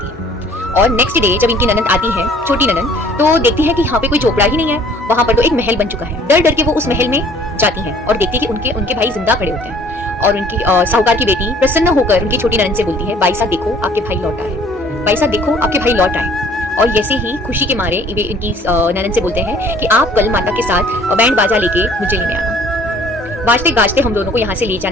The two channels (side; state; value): both; normal; correlation 0.54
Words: है। और नेक्स्ट डे जब इनकी ननद आती है, छोटी ननद, तो देखती है कि यहाँ पे कोई झोपड़ा ही नहीं है, वहां पर तो एक महल बन चुका है। डर डर के वो उस महल में जाती है और देखती है कि उनके भाई जिंदा खड़े होते हैं। और उनकी साहूकार की बेटी प्रसन्न होकर उनकी छोटी ननद से बोलती है, भाई साहब देखो आपके भाई लौट आए, भाई साहब देखो आपके भाई लौट आए। और जैसे ही खुशी के मारे वे इनकी ननद से बोलते हैं कि आप कल माता के साथ बैंड बाजा लेके मुझे लेने आना, बाजते गाजते हम दोनों को यहाँ से ले